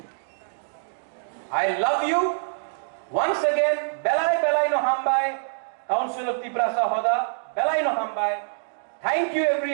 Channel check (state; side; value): silent; left; digital silence